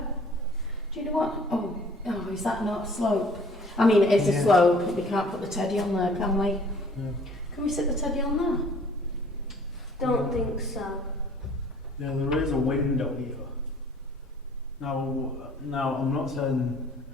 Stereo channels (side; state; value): both; normal; correlation 0.54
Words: Do you know what? Oh, is that not a slope? I mean, it is a Yeah. slope. We can't put the teddy on there, can we? No. Can we sit the teddy on there? Don't think so. Yeah, there is a window here. Now I'm not saying